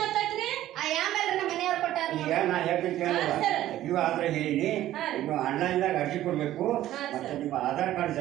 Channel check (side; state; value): left; quieter; 13.7 dB